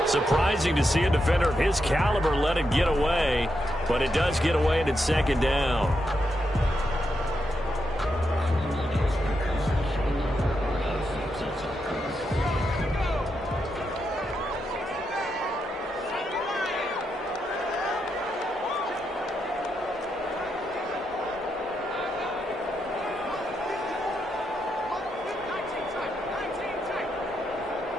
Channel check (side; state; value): both; normal; correlation 0.83